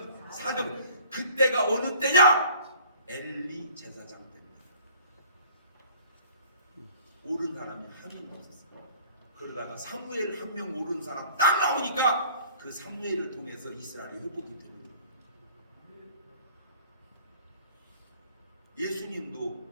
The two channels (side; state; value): both; inverted; correlation -0.51